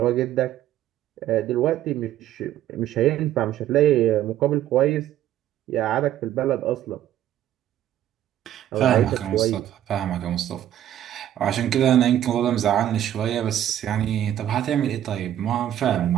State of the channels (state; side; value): quieter; left; 11.8 dB